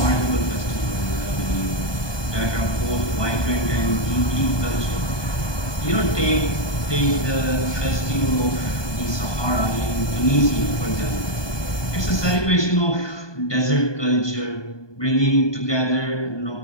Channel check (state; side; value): late; right; 1.2 ms